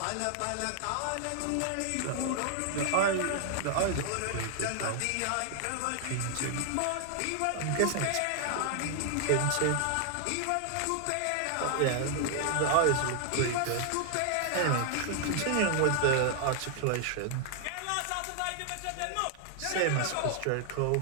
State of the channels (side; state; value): both; different; correlation 0.00